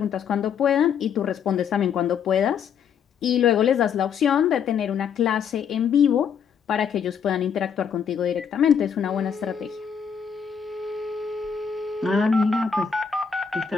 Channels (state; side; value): quieter; right; 7.2 dB